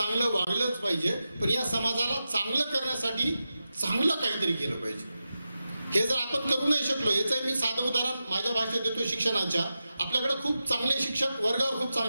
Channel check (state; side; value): inverted; both; correlation -0.91